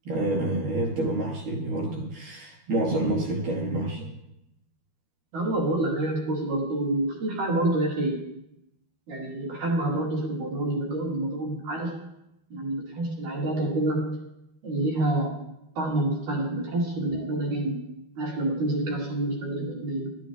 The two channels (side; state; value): left; late; 12 ms